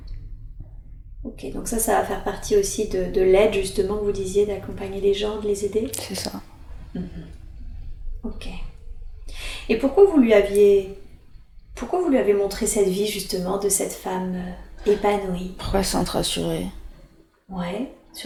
Ok, donc ça va faire partie aussi de l'aide, justement, que vous disiez, d'accompagner les gens, de les aider. C'est ça. Ok. Et pourquoi vous lui avez montré cette vie, justement, de cette femme épanouie? Pourquoi se sentir rassurée? Ouais.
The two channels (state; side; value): identical; both; correlation 1.00